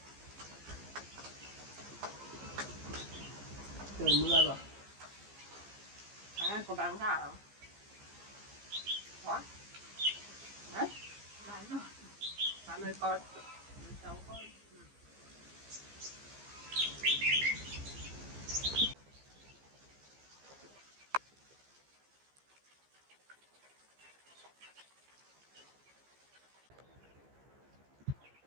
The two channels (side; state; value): left; late; 15 ms